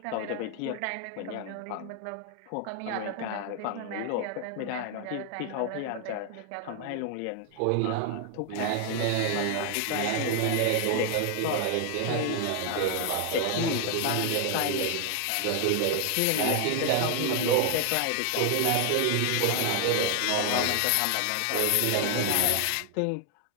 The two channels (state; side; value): different; both; correlation 0.00